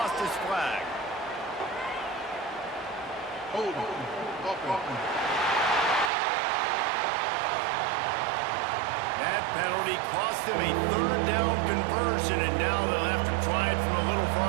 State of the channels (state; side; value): drops out; left; at 6.1 s